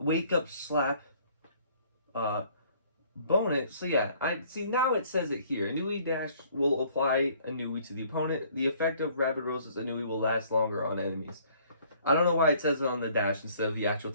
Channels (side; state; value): both; inverted; correlation -0.59